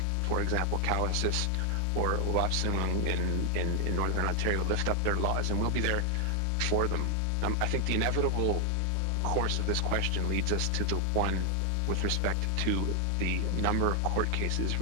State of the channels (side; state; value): both; different; correlation 0.00